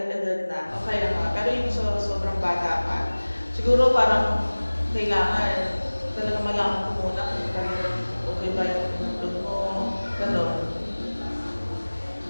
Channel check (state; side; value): inverted; both; correlation -1.00